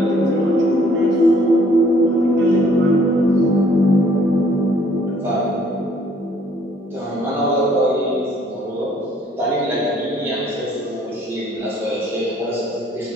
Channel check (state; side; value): normal; both; correlation 0.61